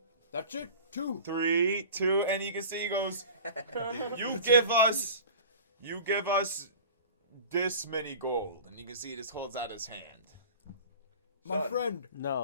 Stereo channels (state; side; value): inverted; both; correlation -0.39